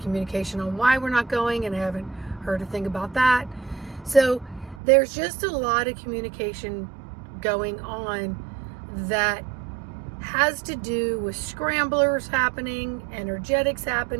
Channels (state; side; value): drops out; left; at 4.8 s